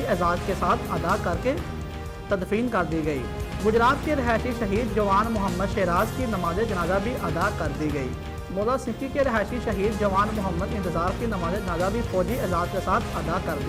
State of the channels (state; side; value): identical; both; correlation 1.00